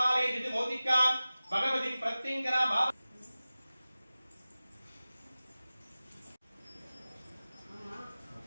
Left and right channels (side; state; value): both; inverted; correlation -0.96